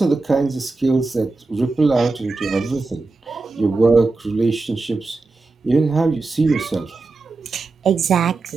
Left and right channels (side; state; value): left; quieter; 3.6 dB